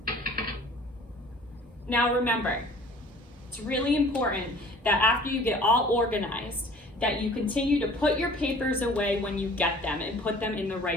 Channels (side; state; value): both; normal; correlation 0.49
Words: Now remember, it's really important that after you get all organized, that you continue to put your papers away when you get them and put them in the